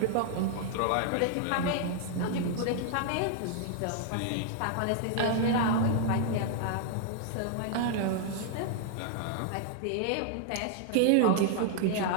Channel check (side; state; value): both; different; correlation -0.01